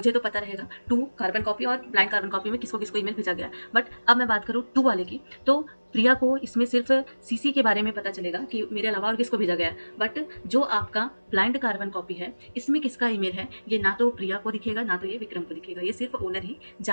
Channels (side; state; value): both; inverted; correlation -1.00